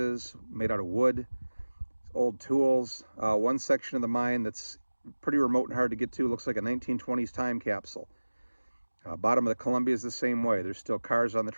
made out of wood, old tools. One section of the mine that's pretty remote and hard to get to looks like a 1920s time capsule. Bottom of the Columbia is the same way. There's still cars on the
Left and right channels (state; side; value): inverted; both; correlation -1.00